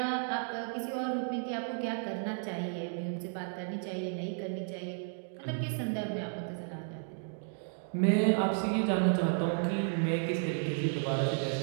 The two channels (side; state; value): left; silent; 56 dB below the other